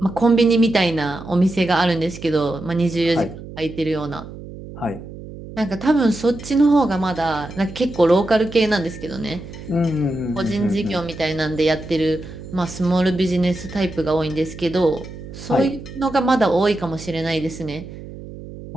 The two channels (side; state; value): right; noise; hum, 13 dB below the sound